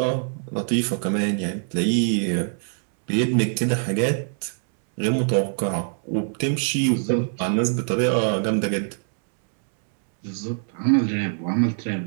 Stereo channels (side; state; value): left; silent; 63 dB below the other